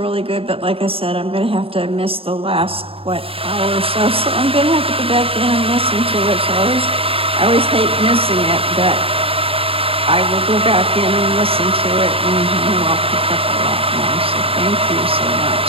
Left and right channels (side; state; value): left; late; 0.27 ms